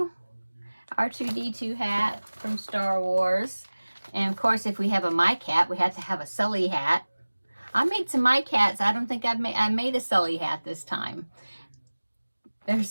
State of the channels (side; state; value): both; inverted; correlation -1.00